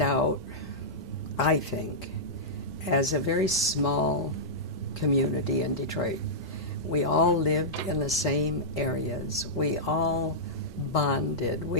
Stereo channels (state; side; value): normal; both; correlation -0.13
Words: out, I think, as a very small community in Detroit. We all lived in the same areas. We all bonded.